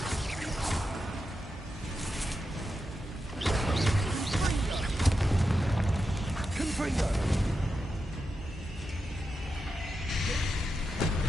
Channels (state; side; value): normal; both; correlation 0.88